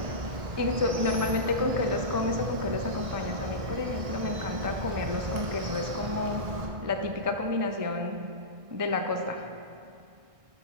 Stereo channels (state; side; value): late; left; 1.6 ms